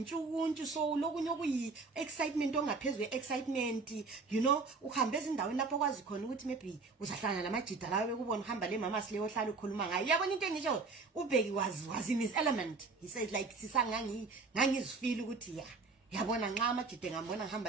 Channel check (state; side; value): quieter; left; 4.2 dB